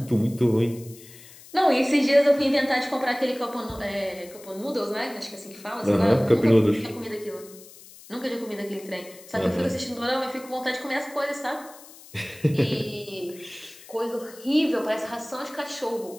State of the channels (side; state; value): left; noise; hiss, 20 dB below the sound